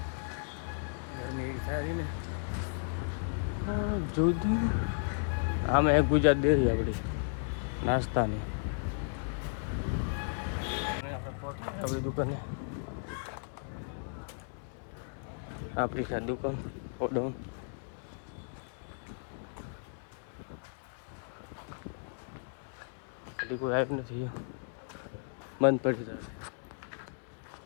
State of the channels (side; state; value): right; silent; 55 dB below the other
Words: ગરમી એવી થાય ને. જોધી આમે એક ગુજરાત દે આપણે નાસ્તાની. આપણી દુકાને આપણી છે દુકાન ઓડમ. હજી કોઈ આવ્યું નથી, બંધ પડી જાય.